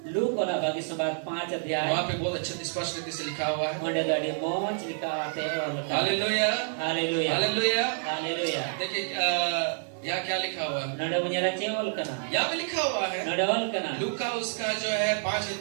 लूक वाला बाकी संवाद 5 अध्याय वहां पे बहुत अच्छे स्पष्ट रीति से लिखा हुआ है ओंडे दाडी मोच लिखा आते और हालेलुया हालेलुया हालेलुया हालेलुया देखिए यहाँ क्या लिखा हुआ है नडे बुनियारा चेवल कना यहाँ पे लिखा हुआ है नडवल कना लूका उसका जो है 5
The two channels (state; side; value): silent; left; digital silence